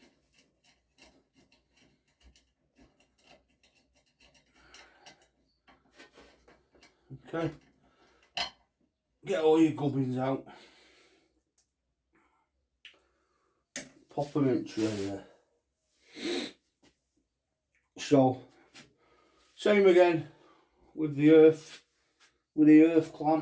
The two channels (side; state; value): both; identical; correlation 1.00